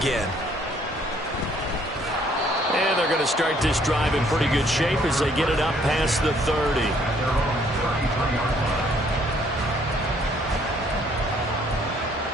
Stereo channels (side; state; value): both; normal; correlation 0.64